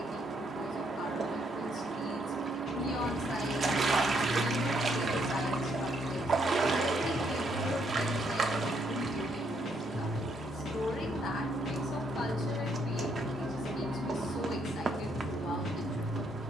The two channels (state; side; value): normal; both; correlation 0.73